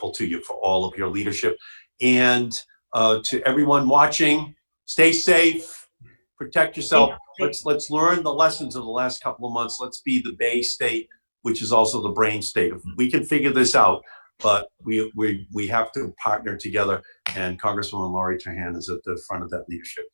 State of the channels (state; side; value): inverted; both; correlation -1.00